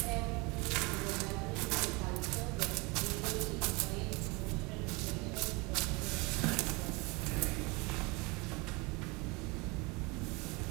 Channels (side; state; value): left; quieter; 26.7 dB